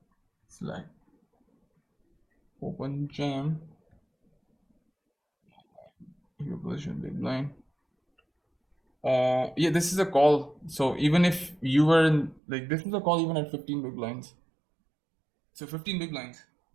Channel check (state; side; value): drops out; left; at 12.4 s